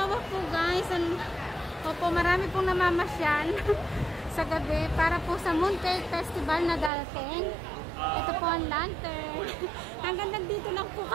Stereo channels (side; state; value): left; drops out; at 6.9 s